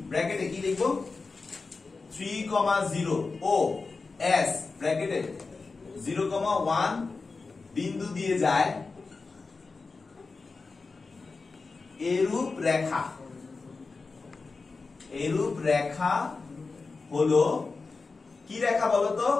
ব্র্যাকেটে কি লিখবো 3,0 ও S ব্র্যাকেটে 0,1 বিন্দু দিয়ে যায় এরূপ রেখা হলো কি রেখা বলতো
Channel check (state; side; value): quieter; right; 4.1 dB